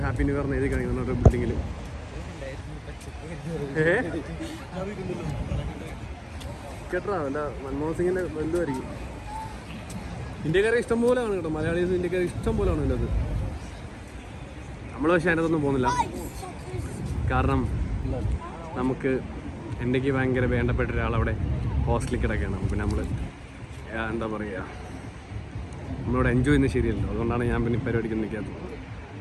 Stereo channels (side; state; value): both; identical; correlation 1.00